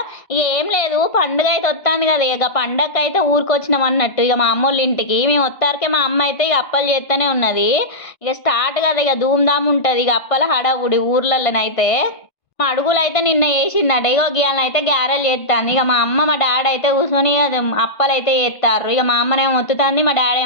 ఇక ఏం లేదు, పండుగ అయితే వస్తుంది కదా, ఇక పండగకి అయితే ఊరికొచ్చినాం అన్నట్టు. ఇక మా అమ్మోళ్ళ ఇంటికి మేము వస్తారకే మా అమ్మ అయితే ఇక అప్పలు చేస్తూనే ఉన్నది. ఇక స్టార్ట్ కదా, ఇక ధూమ్ధామ్ ఉంటుంది ఇక అప్పల హడావుడి ఊర్లలోనైతే. మా అడుగులు అయితే నిన్న వేసిందట, ఇగో గీయాలని అయితే గ్యారెలు చేస్తాను. ఇక మా అమ్మ మా డాడీ అయితే కూర్చొని అది అప్పలు అయితే చేస్తారు. ఇక మా అమ్మనేమో మొత్తుతుంది, మా డాడీ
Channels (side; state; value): right; late; 1.5 ms